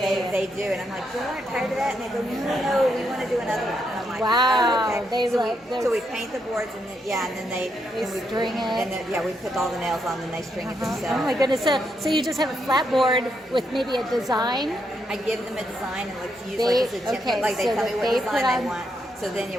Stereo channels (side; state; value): both; normal; correlation 0.79